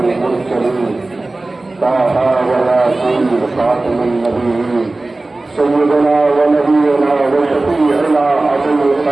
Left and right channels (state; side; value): quieter; left; 3.0 dB